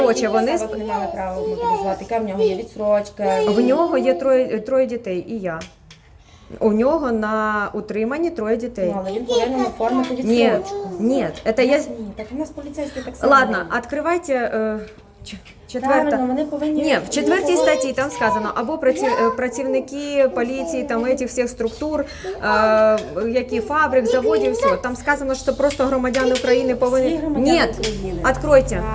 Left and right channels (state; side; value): identical; both; correlation 1.00